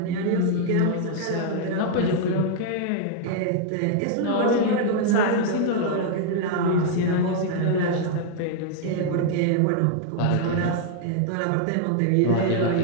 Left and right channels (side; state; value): both; different; correlation 0.00